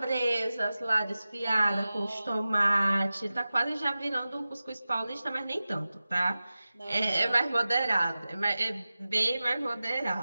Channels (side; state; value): both; inverted; correlation -0.95